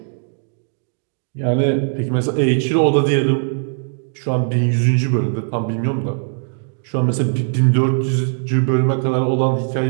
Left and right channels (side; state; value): left; silent; digital silence